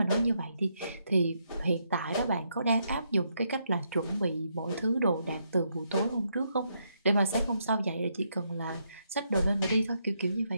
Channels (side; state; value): both; inverted; correlation -0.78